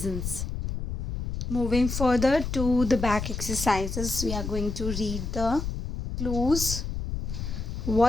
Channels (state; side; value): noise; left; rumble, 4 dB below the sound